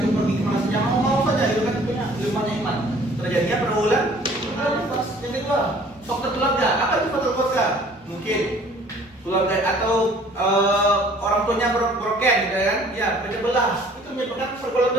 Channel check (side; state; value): both; normal; correlation 0.54